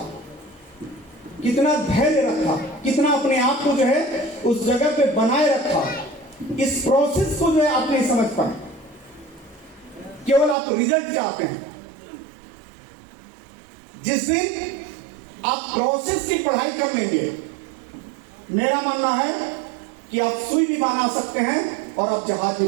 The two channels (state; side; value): drops out; left; at 10.6 s